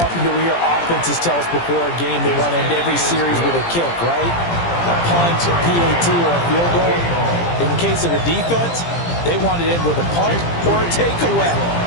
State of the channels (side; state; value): right; late; 17 ms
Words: do we hear offenses tell us before a game they want to end every series with a kick, right? A punt, a PAT, or a field goal. In the case of the defense, they want to end with a punt or a takeaway.